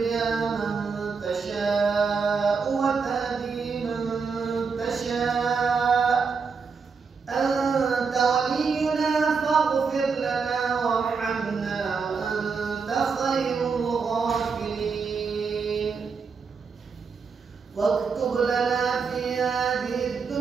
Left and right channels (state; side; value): quieter; left; 5.3 dB